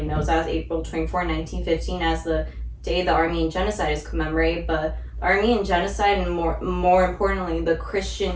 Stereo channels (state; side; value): identical; both; correlation 1.00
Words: knows as April 24, 1915, as the day the Armenian genocide is commemorated. But the Armenian genocide, and more importantly, the Christian